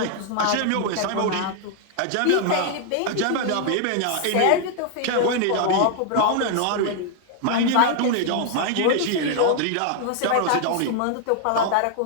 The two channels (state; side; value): different; both; correlation 0.00